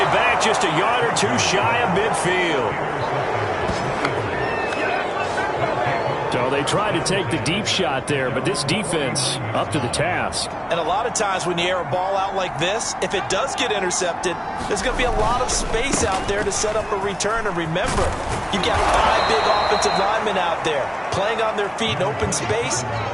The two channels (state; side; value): identical; both; correlation 1.00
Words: back, just a yard or two shy of midfield. So they tried to take the deep shot there, but this defense up to the task. And a lot of times when you air a ball out like this, if it does get intercepted, there's going to be a lot of space out there to set up a return. And remember, you've got 5 big offensive linemen out there playing on their feet in open space.